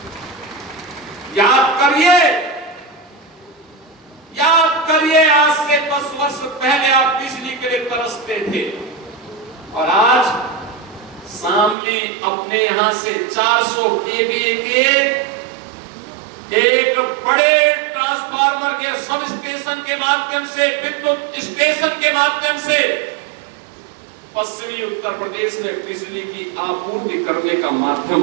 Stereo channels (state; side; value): drops out; left; at 11.8 s